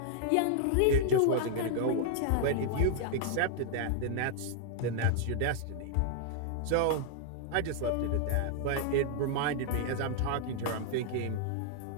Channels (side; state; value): both; different; correlation -0.01